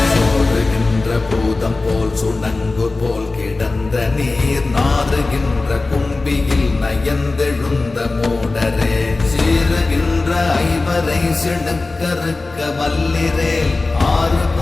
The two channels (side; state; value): right; quieter; 3.4 dB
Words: சோறுகின்ற பூதம் போல் சுணங்கு போல் கிடந்த நீர் நாறுகின்ற கும்பியில் நயந்தெழுந்த மூடரே சீறுகின்ற ஐவரை சிடுக்கறுக்க வல்லிரேல் 6